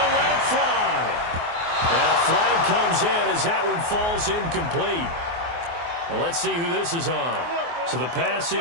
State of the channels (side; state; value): left; late; 24 ms